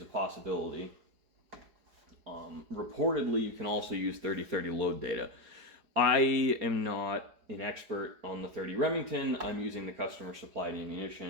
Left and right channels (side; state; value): left; late; 4.8 ms